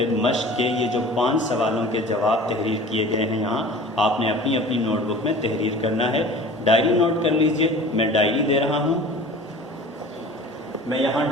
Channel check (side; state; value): both; normal; correlation 0.42